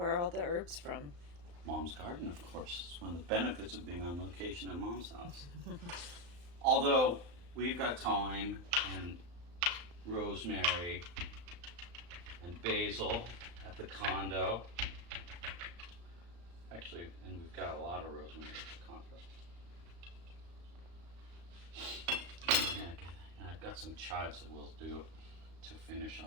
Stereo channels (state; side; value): late; left; 35 ms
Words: are all the herbs from? Mom's garden, of course. It's one of the benefits of being on location at Mom's house. Although we've got thyme and rosemary and basil at the condo. Actually, and we've got a lot of rosemary at the condo. Yeah, and I've got some chives that we'll do to finish